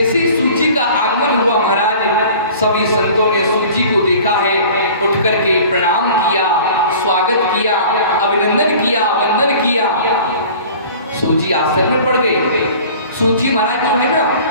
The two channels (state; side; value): inverted; both; correlation -0.45